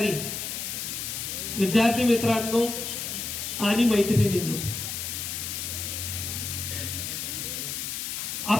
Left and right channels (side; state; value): left; noise; hiss, 4 dB below the sound